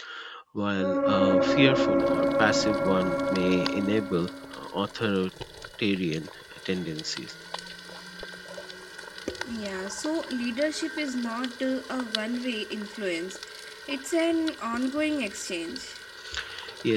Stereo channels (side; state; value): both; identical; correlation 1.00